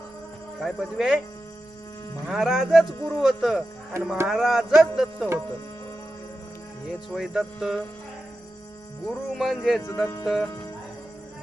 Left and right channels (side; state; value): both; normal; correlation 0.91